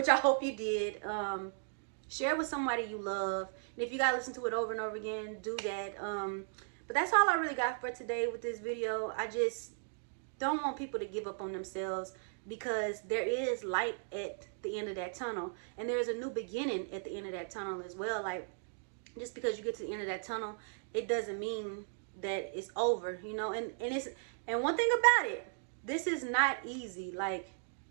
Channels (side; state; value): left; silent; digital silence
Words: I hope you did, share it with somebody you love. And if you gotta listen to it over and over again, do that. But that's all I really got for today with this video. I just don't want people to give up on themselves, because there is light at the end of that tunnel. And there is a new beginning at the end of that tunnel as well. Like, just because you get to the end of that tunnel, it doesn't mean that it's over, you know. And one thing about it, this is not easy. Like,